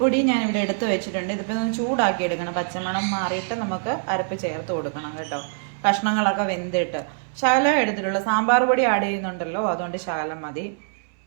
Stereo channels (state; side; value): silent; left; 62 dB below the other